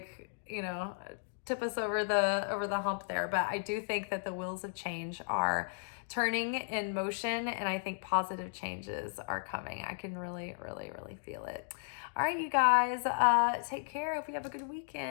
tip us over the hump there? But I do think that the wheels of change are turning in motion, and I think positive changes are coming. I can really, really, really feel it. All right, you guys, take care. Hope you have a good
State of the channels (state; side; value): silent; right; digital silence